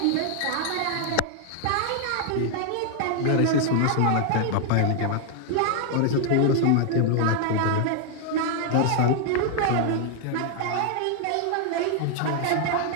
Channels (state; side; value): different; both; correlation 0.00